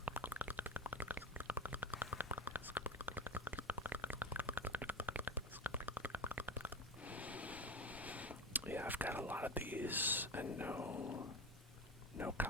Yeah, I've got a lot of these and no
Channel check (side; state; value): both; normal; correlation 0.24